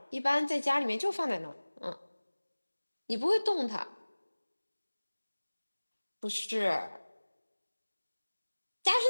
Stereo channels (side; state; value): both; inverted; correlation -1.00